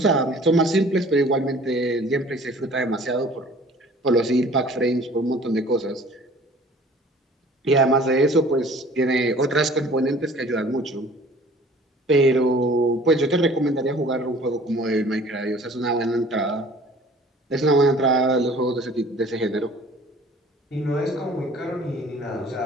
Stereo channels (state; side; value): normal; both; correlation 0.49